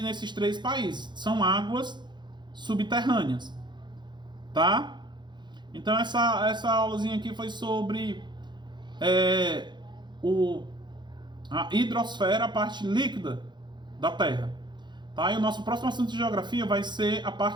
nesses três países. São águas subterrâneas, tá? Então essa aulazinha aqui foi sobre a hidrosfera, a parte líquida da Terra, tá? E o nosso próximo assunto de geografia vai ser a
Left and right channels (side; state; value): left; late; 0.22 ms